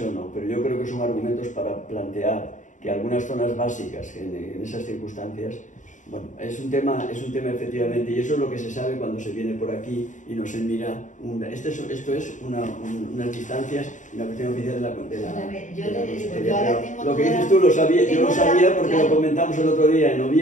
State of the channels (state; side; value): late; right; 0.36 ms